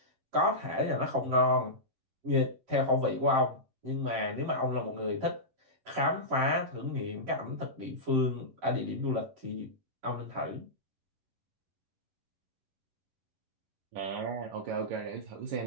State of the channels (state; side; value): late; left; 11 ms